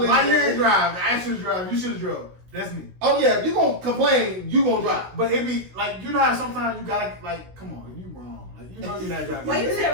Why you didn't drive? I should drive. You should have drove. That's me. Oh yeah, you gonna complain, you gonna drive. But it be like you know how sometimes you gotta like come on, you wrong. Like you know you're not driving. Wait, you said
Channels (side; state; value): left; late; 16 ms